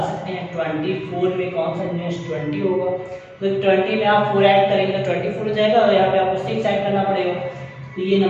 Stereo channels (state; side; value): identical; both; correlation 1.00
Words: सकते हैं 24 में कौन सा नियरेस्ट 20 होगा। तो 20 में आप 4 ऐड करेंगे तो 24 हो जाएगा, और यहाँ पे आपको 6 ऐड करना पड़ेगा। तो ये